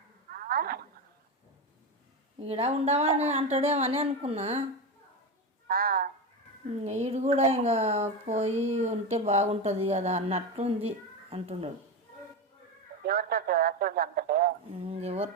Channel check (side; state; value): both; normal; correlation 0.17